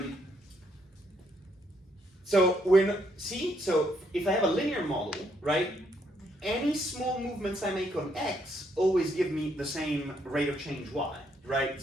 So so if I have a linear model, right, any small movements I make on x always give me the same rate of change y, right?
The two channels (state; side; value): normal; both; correlation 0.73